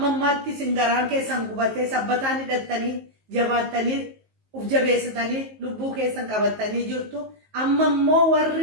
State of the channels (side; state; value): left; late; 19 ms